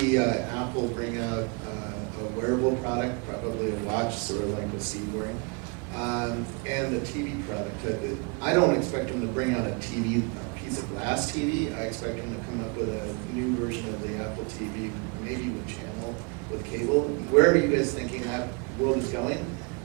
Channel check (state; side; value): quieter; left; 32.3 dB